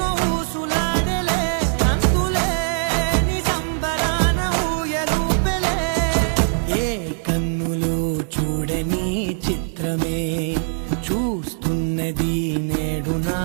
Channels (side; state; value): left; silent; digital silence